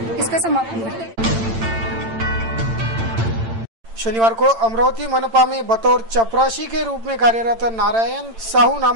इसका समापन करती हैं। शनिवार को अमरावती मनपा में बतौर चपरासी के रूप में कार्यरत नारायण साहू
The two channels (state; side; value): late; left; 8.9 ms